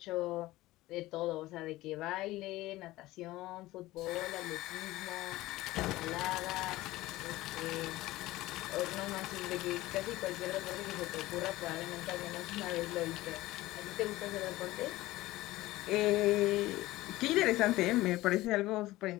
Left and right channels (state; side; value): quieter; right; 17.8 dB